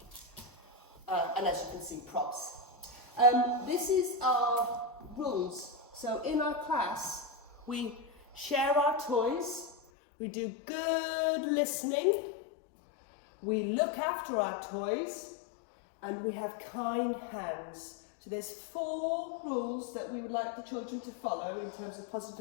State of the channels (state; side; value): drops out; right; at 9.8 s